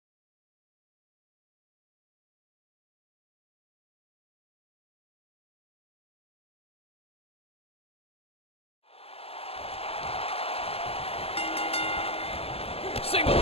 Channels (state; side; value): late; right; 0.28 ms